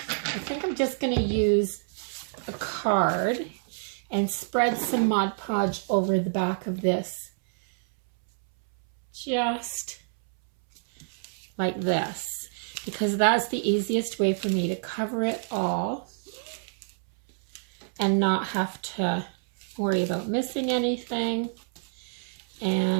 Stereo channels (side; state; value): left; silent; 60 dB below the other